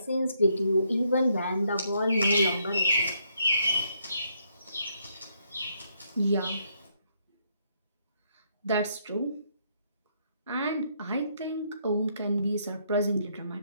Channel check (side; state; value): both; inverted; correlation -0.73